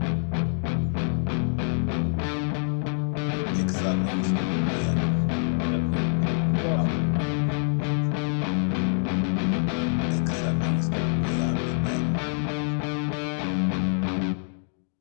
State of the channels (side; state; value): right; silent; digital silence